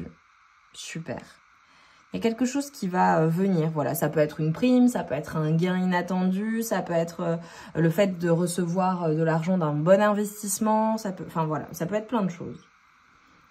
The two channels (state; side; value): identical; both; correlation 1.00